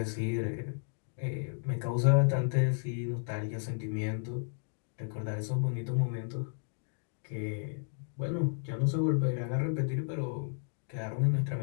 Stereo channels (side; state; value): right; silent; digital silence